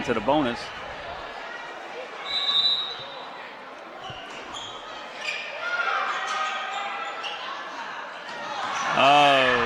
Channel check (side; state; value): both; identical; correlation 1.00